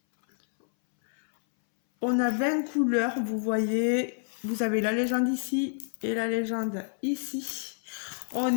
On a 20 couleurs, vous voyez. Vous avez la légende ici et la légende ici.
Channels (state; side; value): silent; right; 59 dB below the other